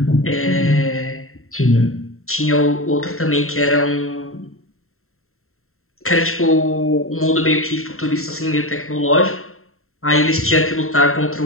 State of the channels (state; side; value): late; right; 0.62 ms